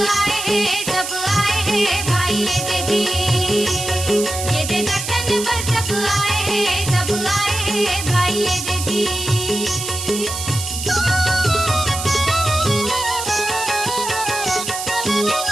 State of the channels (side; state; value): right; noise; hiss, 6 dB below the sound